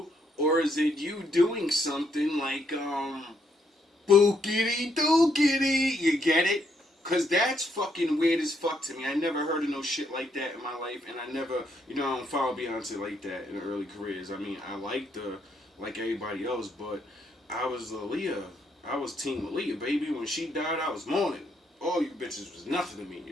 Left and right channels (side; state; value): both; normal; correlation 0.74